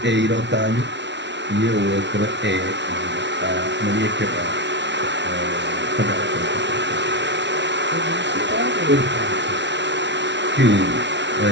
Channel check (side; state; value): left; late; 0.51 ms